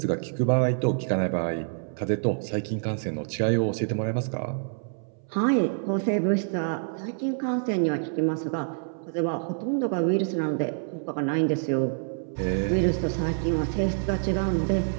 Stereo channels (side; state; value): left; silent; 60 dB below the other